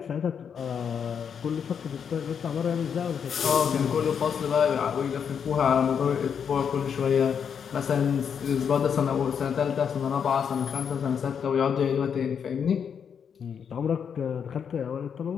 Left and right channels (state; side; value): quieter; right; 7.3 dB